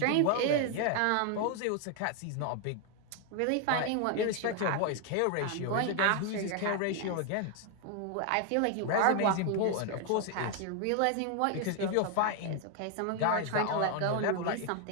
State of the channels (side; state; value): both; different; correlation 0.01